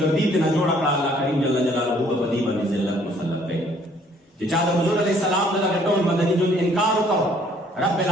ترې نه جوړه کړه، الله کریم جل جلاله به په دې باندې ذلت مسلط کوي. چې چا د حضور علیه السلام د دغه ټول مدني ژوند انکار وکړ، رب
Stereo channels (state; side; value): normal; both; correlation 0.61